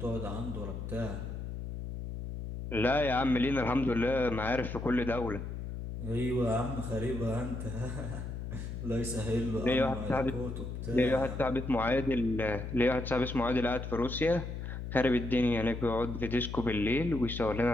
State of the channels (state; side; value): noise; left; hum, 6 dB below the sound